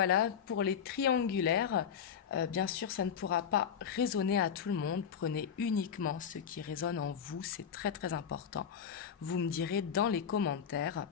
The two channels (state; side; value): quieter; right; 7.7 dB